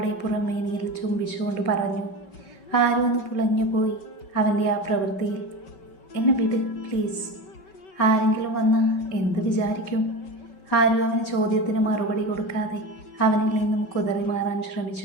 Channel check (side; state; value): right; late; 5.3 ms